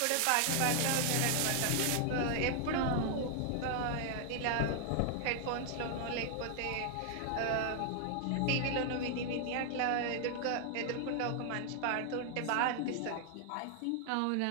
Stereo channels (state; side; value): different; both; correlation 0.00